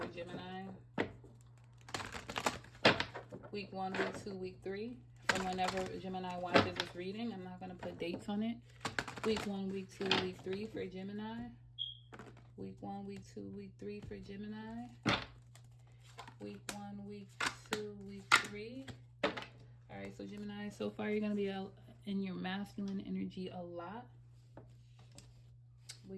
Gemini. Week 1, week 2, week 3. From whenever Gemini watches this reading. I'm not going to put dates on it. Week 1, week 2, week 3 for Gemini. Week 1, week 2, week 3 for Gemini. Week 1, week 2, week 3. All right, so Gemini, so far you're going to be in your masculine energy a lot.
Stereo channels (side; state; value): both; identical; correlation 1.00